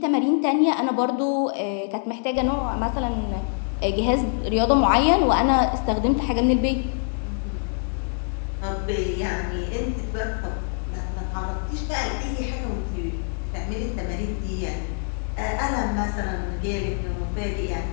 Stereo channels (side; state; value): right; silent; digital silence